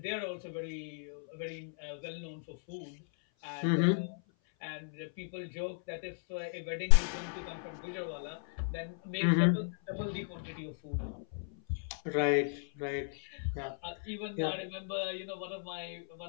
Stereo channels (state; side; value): silent; right; 54 dB below the other